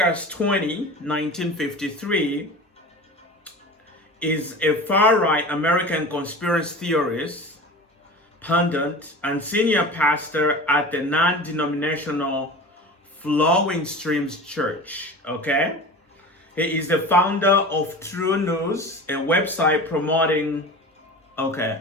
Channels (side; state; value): both; normal; correlation 0.34